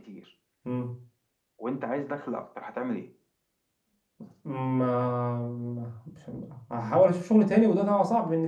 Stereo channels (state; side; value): identical; both; correlation 1.00